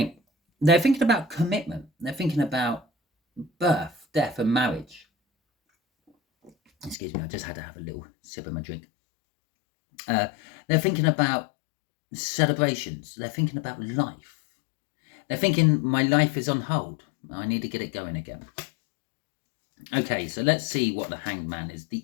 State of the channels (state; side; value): drops out; right; at 7.0 s